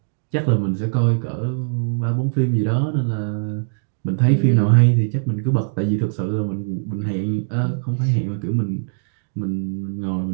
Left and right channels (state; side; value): silent; left; digital silence